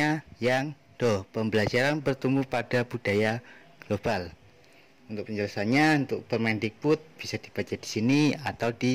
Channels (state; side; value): identical; both; correlation 1.00